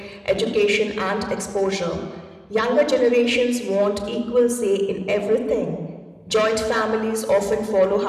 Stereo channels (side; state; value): both; identical; correlation 1.00